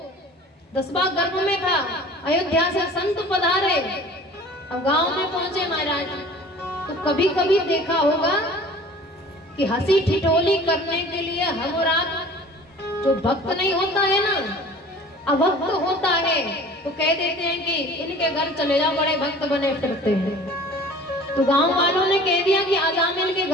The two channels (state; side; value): normal; both; correlation 0.45